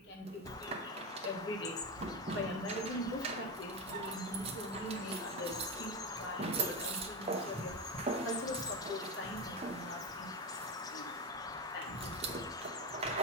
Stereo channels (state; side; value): normal; both; correlation 0.16